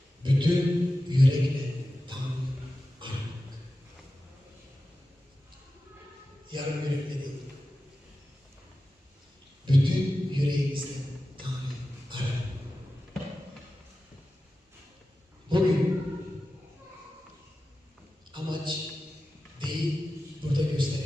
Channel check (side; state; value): both; normal; correlation 0.94